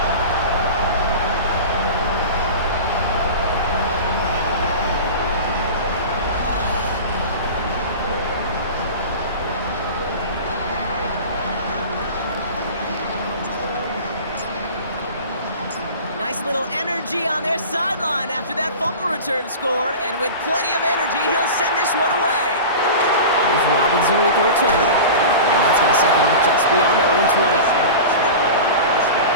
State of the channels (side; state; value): both; inverted; correlation -0.33